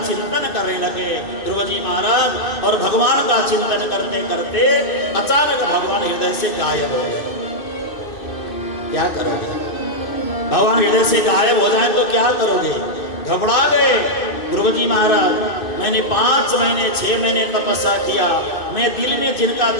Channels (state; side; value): late; right; 2.6 ms